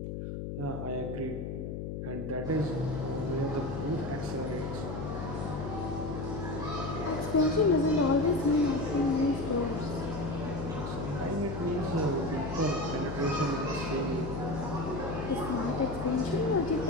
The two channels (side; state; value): left; noise; hum, 5 dB below the sound